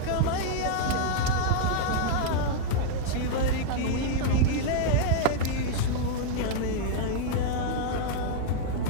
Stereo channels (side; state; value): both; different; correlation -0.01